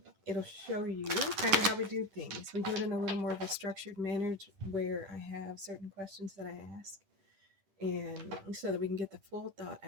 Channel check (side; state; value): left; late; 10 ms